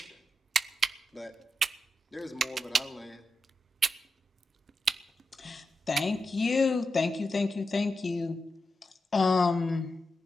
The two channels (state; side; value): normal; both; correlation 0.88